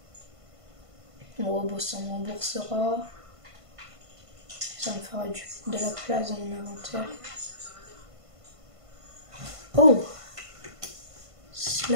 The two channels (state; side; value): late; left; 1.5 ms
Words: Bon, bon, ça me remboursera. Ça me fera de la place dans mon inventaire. Oh!